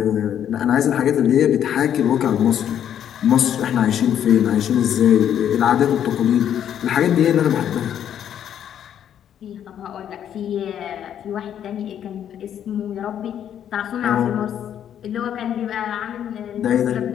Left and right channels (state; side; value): quieter; right; 9.8 dB